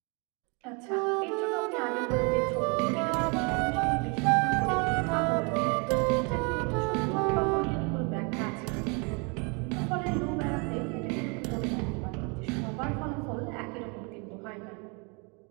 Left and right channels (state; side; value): quieter; left; 32.4 dB